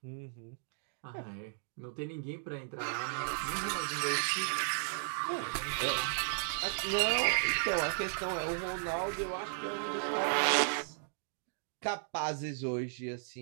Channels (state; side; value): silent; left; digital silence